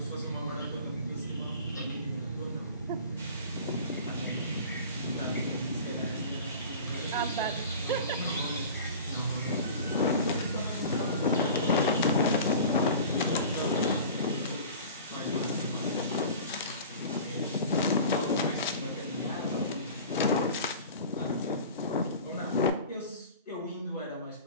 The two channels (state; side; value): inverted; both; correlation -0.39